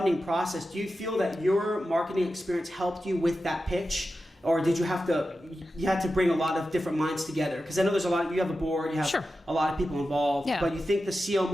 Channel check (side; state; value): both; normal; correlation 0.92